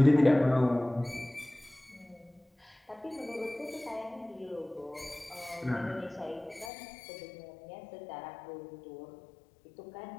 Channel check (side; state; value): right; drops out; at 6.7 s